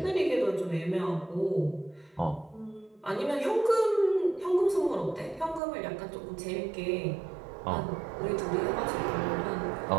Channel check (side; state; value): left; drops out; at 5.6 s